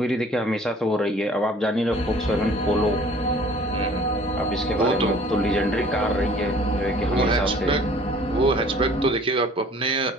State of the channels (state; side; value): normal; both; correlation 0.52